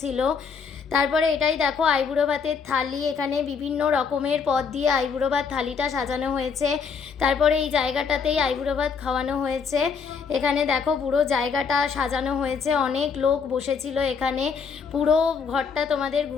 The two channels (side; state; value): right; quieter; 5.8 dB